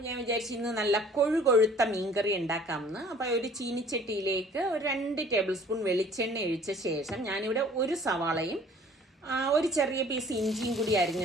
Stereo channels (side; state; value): both; normal; correlation 0.52